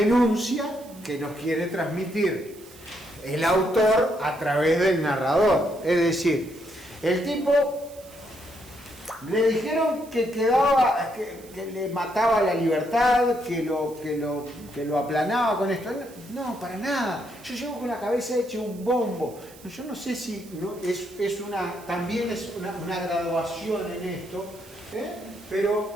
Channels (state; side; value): noise; right; hiss, 22 dB below the sound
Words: que nos quiere transmitir el autor a través del narrador. Es decir, el tipo le dijeron que quedaba, que le mataba la libertad, que lo aplanaba con esto. No, para nada. Yo llevo con la cabeza hecha un bombo. Yo no sé si no, también es una graduación en esto,